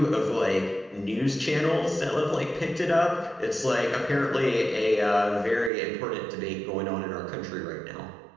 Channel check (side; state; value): left; drops out; at 5.7 s